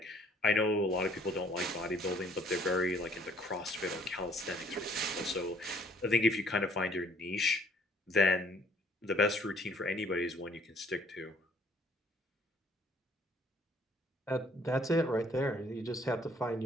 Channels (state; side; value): normal; both; correlation 0.60